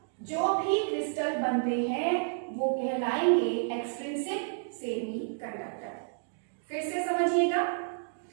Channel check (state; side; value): silent; left; digital silence